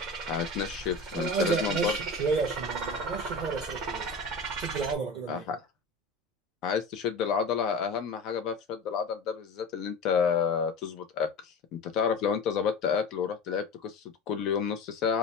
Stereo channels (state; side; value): quieter; right; 3.0 dB